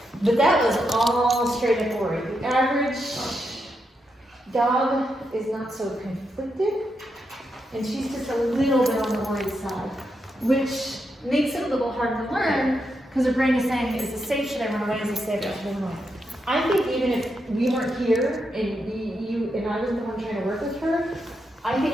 But that was all straight up worry. The average dog is not so conflicted, and she's just a little bit on the worried side, which makes it a little hard to learn because her brain is saying, is this safe? Should I run away? Is this safe? Should I run away? I think even if we weren't here and you and I was the one trying to work with her, I think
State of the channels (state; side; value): normal; both; correlation 0.83